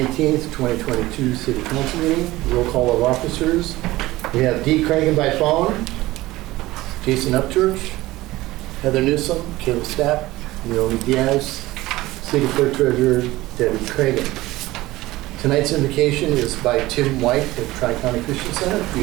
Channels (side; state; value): left; quieter; 18.1 dB